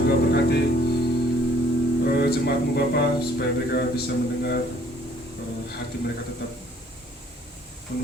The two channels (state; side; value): normal; both; correlation 0.60